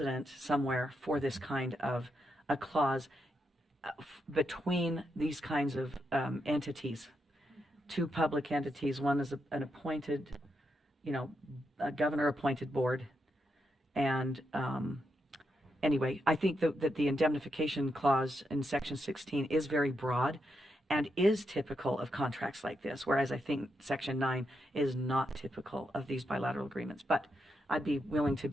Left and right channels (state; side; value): normal; both; correlation 0.82